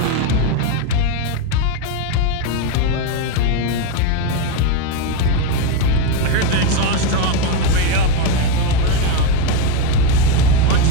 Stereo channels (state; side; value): different; both; correlation 0.03